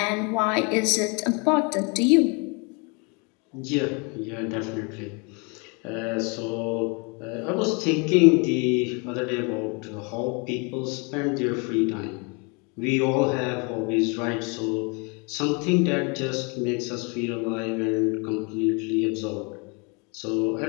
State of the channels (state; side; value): quieter; right; 32.3 dB